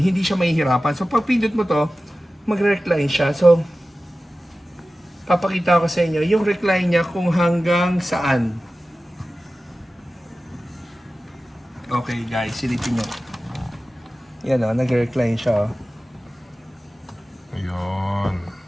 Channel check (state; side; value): normal; both; correlation 0.95